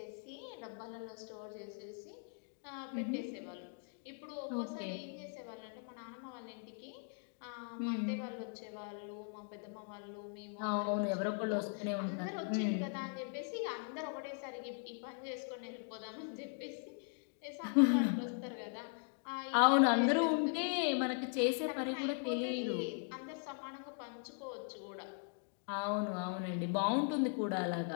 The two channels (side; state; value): right; silent; 51 dB below the other